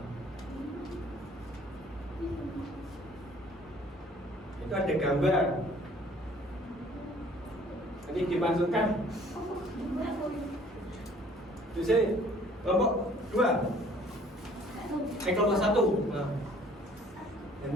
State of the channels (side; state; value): both; normal; correlation 0.56